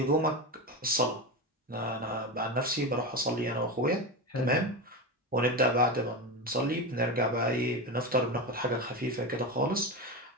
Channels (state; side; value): normal; both; correlation 0.19